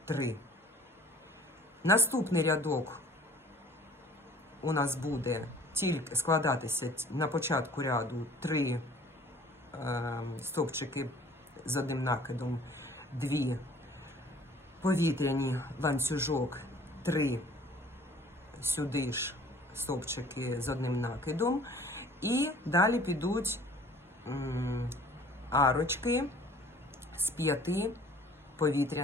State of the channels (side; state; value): both; normal; correlation 0.51